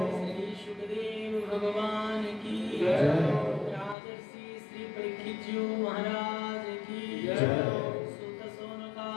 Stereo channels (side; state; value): right; drops out; at 4.0 s